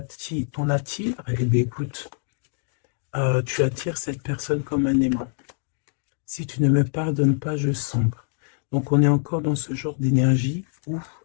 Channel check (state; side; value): silent; right; digital silence